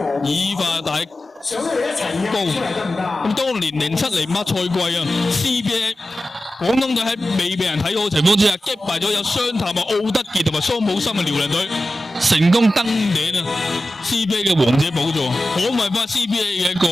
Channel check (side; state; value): both; normal; correlation 0.94